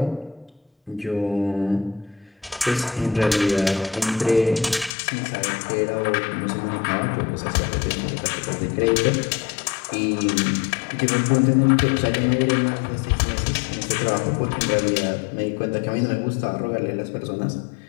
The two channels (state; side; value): drops out; right; at 4.9 s